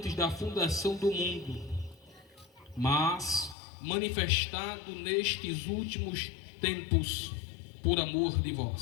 da fundação do mundo, mas manifestado nestes últimos tempos por amor de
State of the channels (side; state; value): right; drops out; at 3.6 s